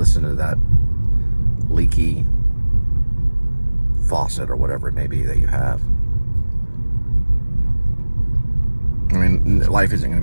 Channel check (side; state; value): both; inverted; correlation -1.00